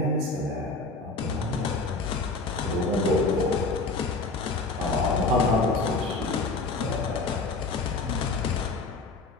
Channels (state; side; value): quieter; right; 3.5 dB